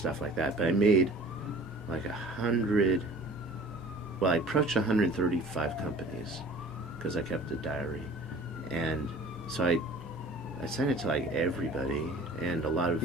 like that. But I made like 100, well, I approached 135 companies because I kept a diary. And so I sent it to, like, everybody, and a lot of...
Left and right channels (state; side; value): normal; both; correlation 0.46